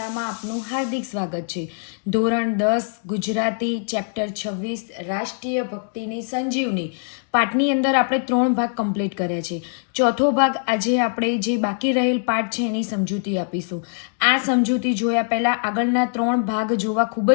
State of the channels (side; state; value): right; silent; 64 dB below the other